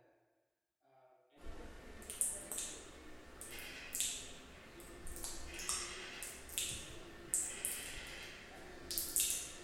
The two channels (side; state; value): both; identical; correlation 1.00